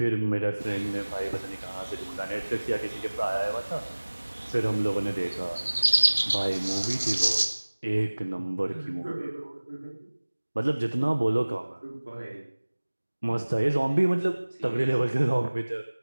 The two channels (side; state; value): both; inverted; correlation -1.00